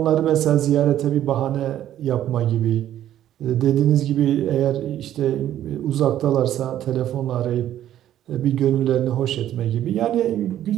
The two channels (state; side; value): quieter; left; 11.9 dB